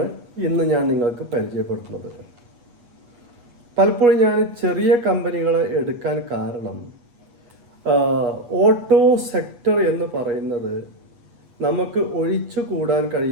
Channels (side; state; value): left; late; 8.3 ms